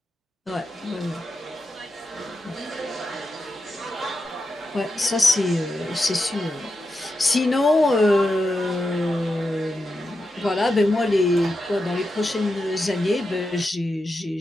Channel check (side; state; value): both; normal; correlation 0.88